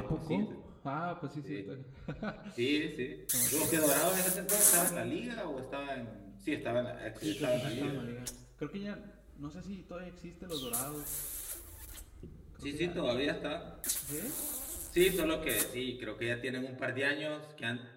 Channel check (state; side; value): identical; both; correlation 1.00